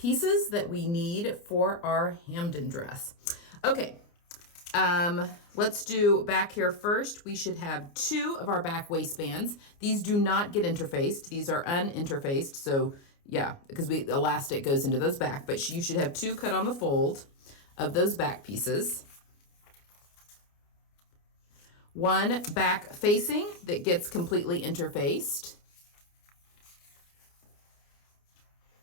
that we need for our Hampden dress. Okay, Let's do back here first. We should have 2 of our back waistbands. These do not get interfaced. These are uninterfaced. So yeah, because elastic goes into those back, but you should have 2 cut on the fold of those back pieces. 1 back facing that gets completely interfaced.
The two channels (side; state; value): right; late; 29 ms